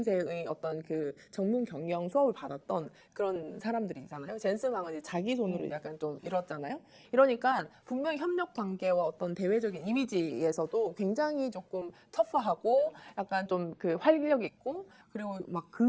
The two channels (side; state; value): both; identical; correlation 1.00